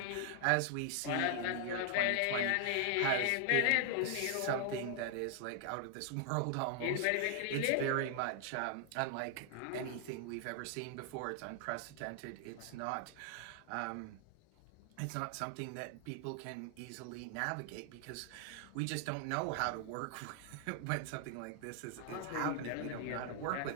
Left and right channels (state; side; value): different; both; correlation 0.00